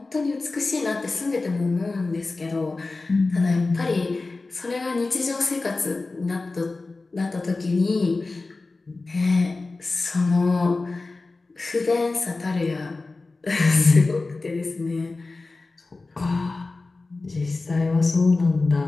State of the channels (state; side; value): quieter; right; 3.5 dB